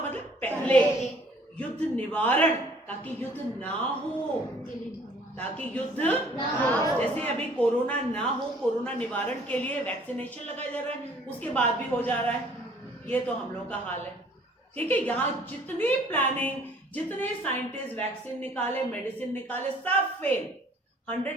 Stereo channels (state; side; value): normal; both; correlation 0.56